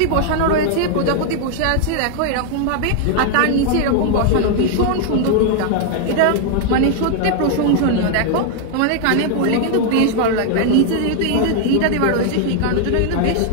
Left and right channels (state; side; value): different; both; correlation 0.00